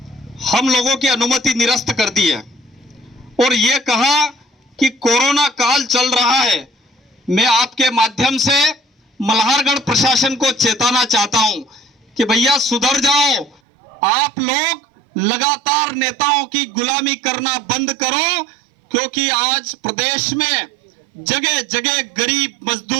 हम लोगों की अनुमति निरस्त कर दी है और ये कहा कि कोरोना काल चल रहा है। मैं आपके माध्यम से मल्हारगढ़ प्रशासन को चेताना चाहता हूं कि भैया सुधर जाओ, आप लोग लगातार नेताओं की गुलामी करना बंद करो, क्योंकि आज प्रदेश में जगह जगह गरीब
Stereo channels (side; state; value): left; drops out; at 13.6 s